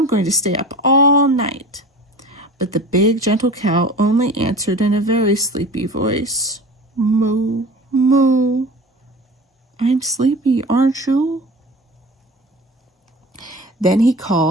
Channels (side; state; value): both; normal; correlation 0.37